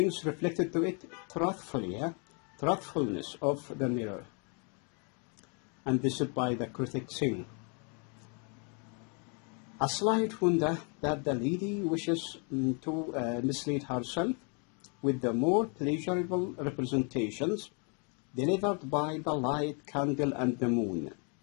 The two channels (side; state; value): right; quieter; 37.0 dB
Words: reflected to it truthfully, truthfulness of the mirror. And this is by the critic saying, a slight wonder that the lady wishes to mislead herself with the more pleasurable representations delivered by the light candle and the moon.